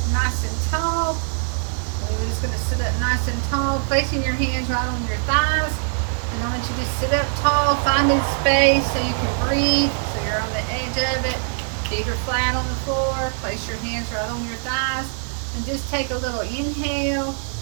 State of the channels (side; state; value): left; silent; 62 dB below the other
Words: nice and tall. So you're just going to sit up nice and tall, placing your hands right on your thighs. And I want you to sit up tall, finding space so you can breathe. So you're on the edge of it. Feet are flat on the floor. Place your hands right on your thighs. And just take a little inhale,